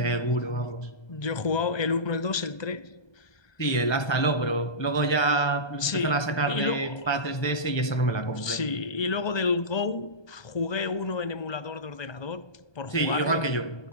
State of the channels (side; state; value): right; late; 1.2 ms